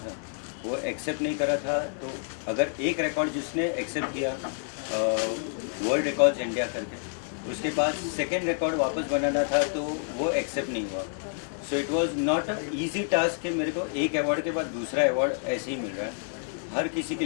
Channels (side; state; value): right; silent; 59 dB below the other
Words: वो एक्सेप्ट नहीं कर रहा था। तो अगर एक रिकॉर्ड जिसने एक्सेप्ट किया वर्ल्ड रिकॉर्ड्स इंडिया करके, उसके बाद सेकेंड रिकॉर्ड वापस बनाना था तो वो एक्सेप्ट नहीं हुआ। So it was not a easy task कि मेरे को एक अवार्ड के बाद दूसरा अवार्ड ऐसे ही मिल रहा है। हर किसी के